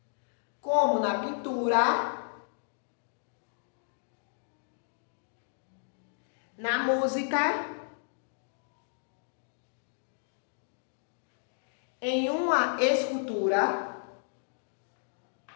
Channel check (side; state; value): right; silent; digital silence